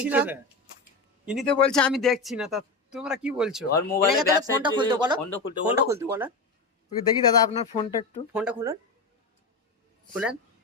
না, ইনি তো বলছে আমি দেখছি না, তা তোমরা কি বলছো? ওর মোবাইলে এনাকে তাহলে ফোনটা খুলতে বলো, ফোনটা খুলতে ফোনটা বলো। খুলতে বলো, ওকে দেখি দাদা আপনার ফোনটা একটু। ফোনটা খুলুন, খুলেন,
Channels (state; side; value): quieter; right; 3.6 dB